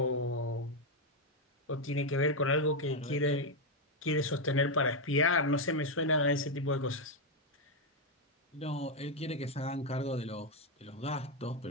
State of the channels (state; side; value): normal; both; correlation 0.03